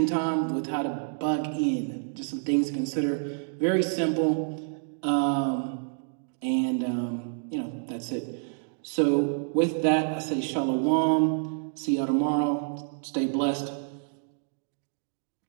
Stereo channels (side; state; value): left; silent; digital silence